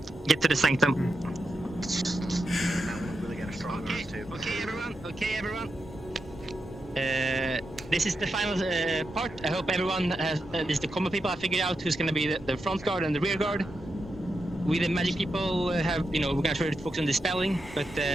Get to the sanctum. Okay, everyone. This is the final part. I hope everyone has. This is the combat people. I figured out who's gonna be the front guard and the rear guard. We the magic people have, we're gonna try to focus on the spelling, but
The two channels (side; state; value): both; normal; correlation 0.87